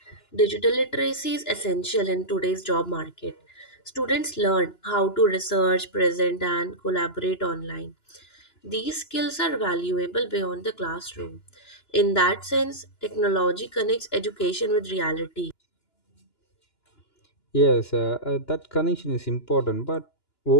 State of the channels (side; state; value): right; late; 2.9 ms